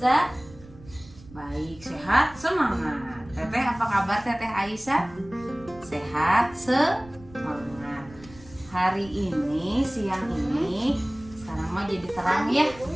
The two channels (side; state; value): right; noise; rumble, 21 dB below the sound